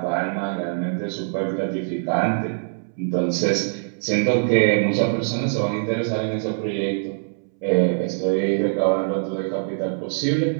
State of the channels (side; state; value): left; silent; 63 dB below the other